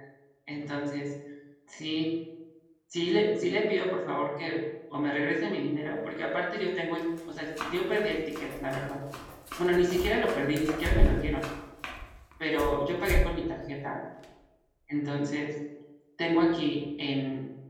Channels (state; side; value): identical; both; correlation 1.00